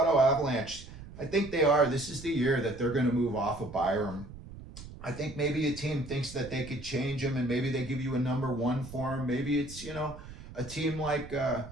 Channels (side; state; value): right; noise; rumble, 15 dB below the sound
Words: Avalanche, I think they are. This is the year that they're going to move off of Byram. I think maybe a team thinks that they could change him, and maybe they give you a number one for him. Maybe it's, a team like,